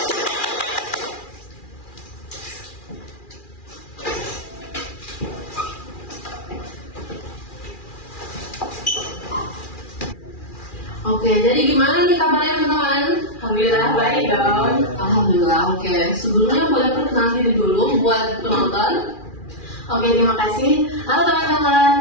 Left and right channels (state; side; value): late; right; 2.4 ms